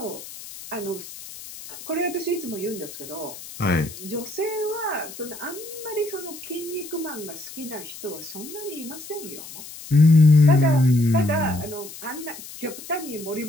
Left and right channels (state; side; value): noise; left; hiss, 14 dB below the sound